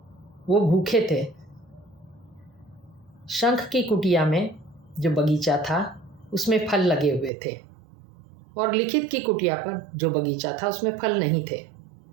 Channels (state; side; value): drops out; left; at 7.3 s